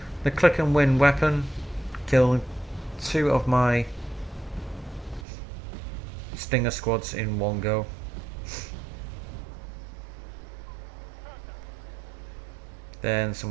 The click and win weapon killed 2 of my Stinger squads in one go. Then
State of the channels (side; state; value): left; drops out; at 5.2 s